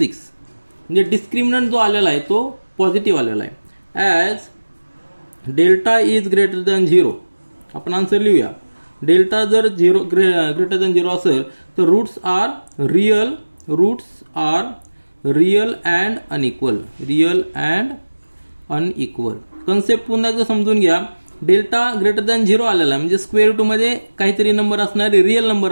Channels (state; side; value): inverted; both; correlation -1.00